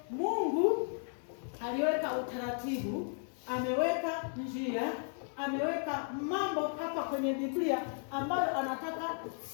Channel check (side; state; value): right; silent; 55 dB below the other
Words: Mungu aliweka utaratibu, ameweka njia, ameweka mambo hapa kwenye Biblia ambayo anataka